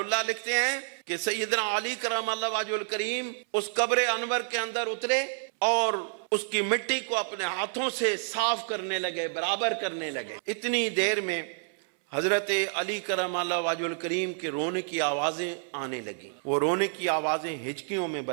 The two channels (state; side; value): silent; left; 59 dB below the other